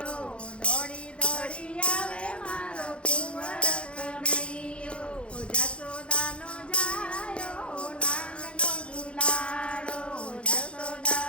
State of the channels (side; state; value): right; late; 0.058 ms